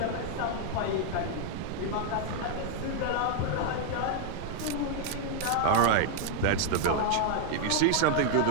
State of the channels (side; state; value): both; different; correlation 0.00